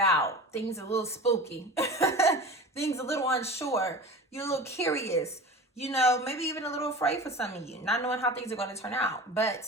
out. Things a little spooky. Things a little unsure. You're a little curious. You know, maybe even a little afraid for some of you, not knowing how things are going to turn out. But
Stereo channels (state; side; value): normal; both; correlation 0.34